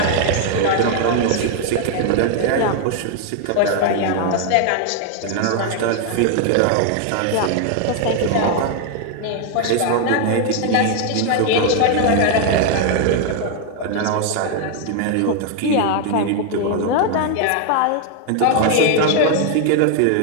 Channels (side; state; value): both; different; correlation 0.00